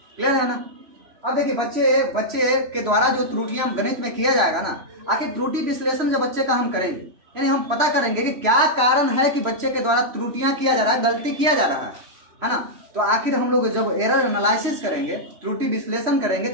क्लियर है ना। अब देखिए, बच्चे के द्वारा जो त्रुटियां गणित में किया जाएगा ना, आखिर त्रुटि विश्लेषण जब बच्चे का हम करेंगे, यानी हम पता करेंगे कि क्या कारण है कि बच्चे के द्वारा त्रुटियां किया जा रहा है, गलती किया जा रहा है ना। तो आखिर हम लोग जब एरर एनालिसिस करेंगे, त्रुटि विश्लेषण करेंगे,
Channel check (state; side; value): late; left; 3.0 ms